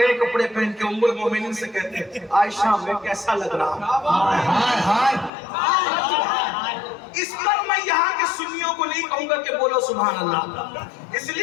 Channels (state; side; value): drops out; right; at 5.3 s